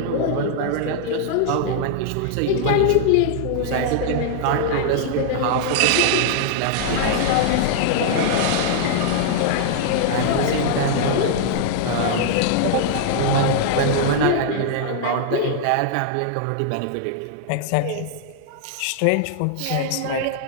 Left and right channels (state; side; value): different; both; correlation -0.01